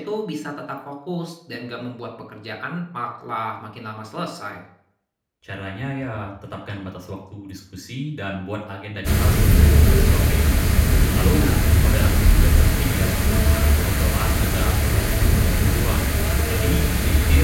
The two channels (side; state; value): both; identical; correlation 1.00